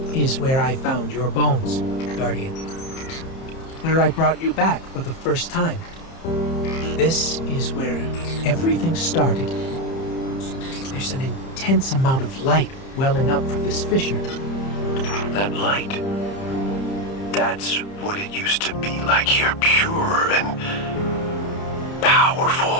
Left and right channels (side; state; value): right; late; 30 ms